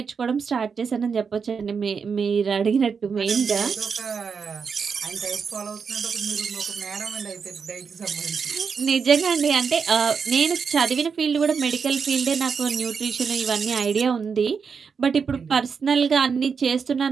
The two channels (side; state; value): left; quieter; 5.9 dB